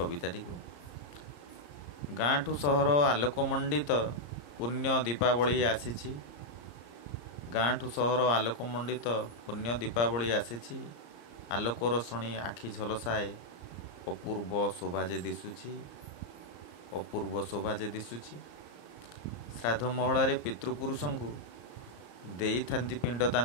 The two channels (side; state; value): right; late; 34 ms